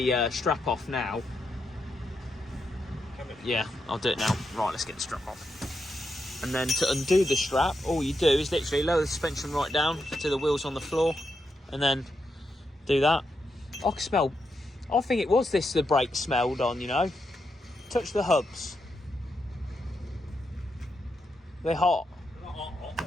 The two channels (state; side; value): normal; both; correlation 0.84